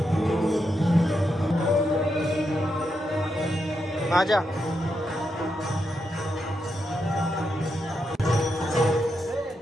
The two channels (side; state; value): both; normal; correlation 0.84